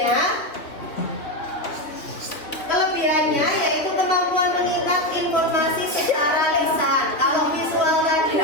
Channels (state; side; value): late; right; 2.9 ms